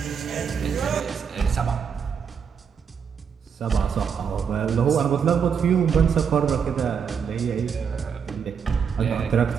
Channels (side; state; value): left; quieter; 6.8 dB